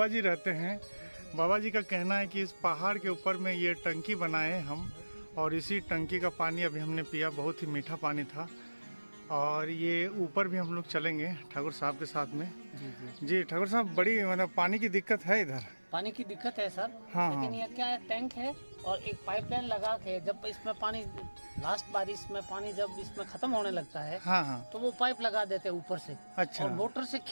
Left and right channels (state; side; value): inverted; both; correlation -1.00